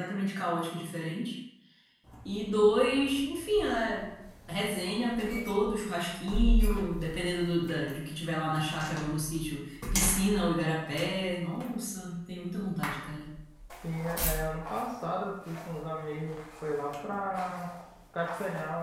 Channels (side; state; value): both; identical; correlation 1.00